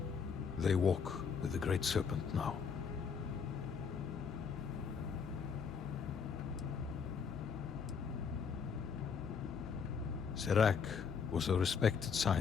They walk with the Great Serpent now. Serac was a respected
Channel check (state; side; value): quieter; right; 6.3 dB